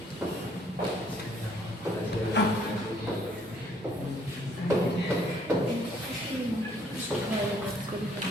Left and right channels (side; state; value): both; normal; correlation 0.64